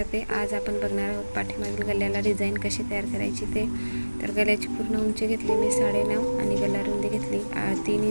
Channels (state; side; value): inverted; both; correlation -1.00